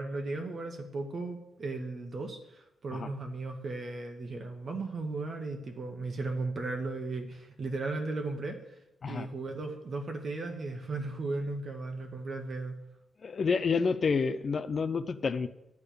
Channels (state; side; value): normal; both; correlation 0.82